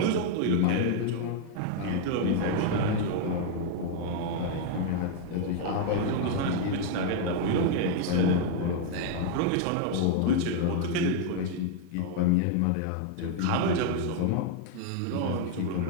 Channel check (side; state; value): both; different; correlation 0.00